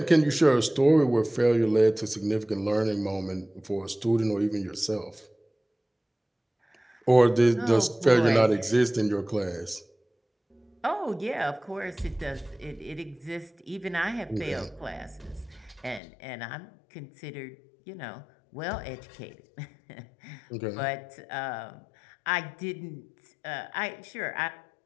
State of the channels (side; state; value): right; drops out; at 16.0 s